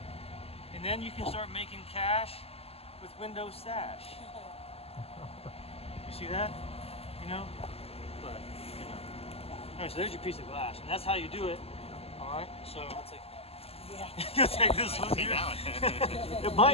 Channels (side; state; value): right; late; 0.29 ms